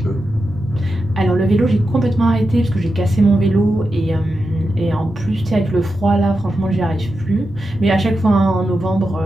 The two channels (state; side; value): normal; both; correlation 0.89